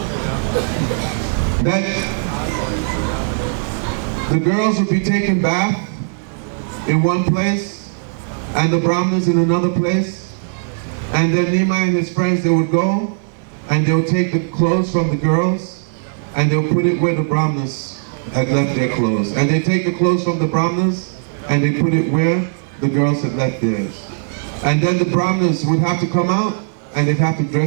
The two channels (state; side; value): silent; left; 67 dB below the other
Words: That the girls would be taking bath in one place and the Brahmanas in another place, and then Nimai and his friends, they would go and they would take the clothes from the girls and they would put it where the Brahmanas had left their clothes, and they take the clothes from the Brahmanas and they put it where the girls had left theirs. And then the Brahmanas would have to come out and they'd have to